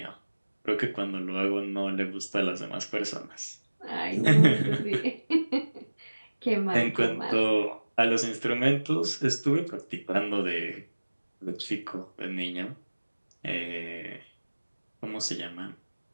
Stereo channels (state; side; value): inverted; both; correlation -1.00